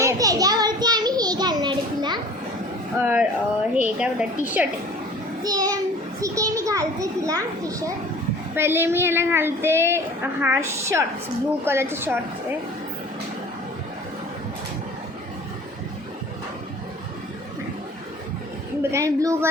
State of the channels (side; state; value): both; normal; correlation 0.45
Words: त्याच्यावरती आम्ही हे घालणार आहे तिला. हे काय बोलतात, टी शर्ट. ते ठीक आहे, मी घालते तिला टी शर्ट. पहिले मी ह्याला घालते हा शॉर्ट्स, ब्लू कलरचे शॉर्ट्स आहे. ब्लू